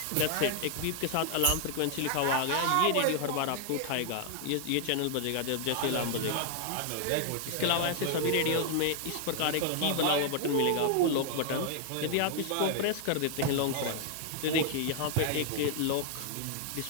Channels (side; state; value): both; different; correlation 0.00